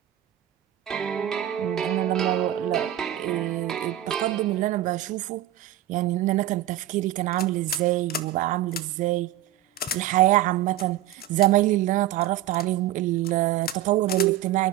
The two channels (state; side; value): quieter; left; 12.8 dB